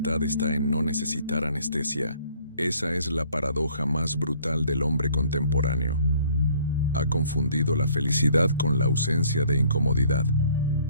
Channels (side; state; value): both; inverted; correlation -0.58